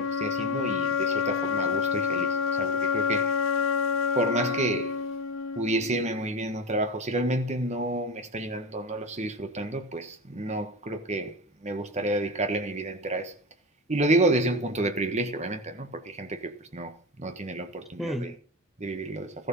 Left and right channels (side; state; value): both; normal; correlation 0.20